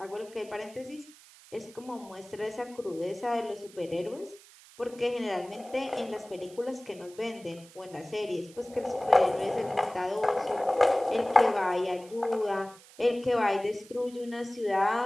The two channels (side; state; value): right; noise; hiss, 22 dB below the sound